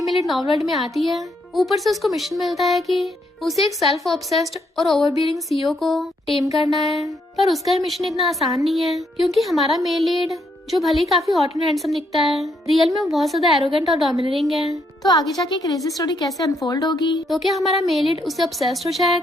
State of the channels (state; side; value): normal; both; correlation 0.74